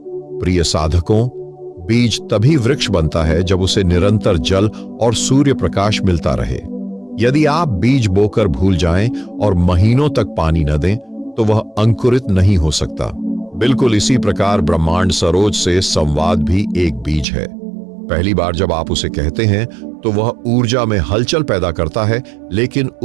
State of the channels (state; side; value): drops out; left; at 17.2 s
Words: साधकों, बीज तभी वृक्ष बनता है जब उसे निरंतर जल और सूर्य प्रकाश मिलता रहे। यदि आप बीज बोकर भूल जाएं और महीनों तक पानी न दें, तो वह अंकुरित नहीं हो सकता। बिल्कुल इसी प्रकार ब्रह्मांड सरोज से संवाद भी एक बीज है। पहली बार जब आप उसे कहते हैं, तो वह ऊर्जा में हलचल पैदा करता है, लेकिन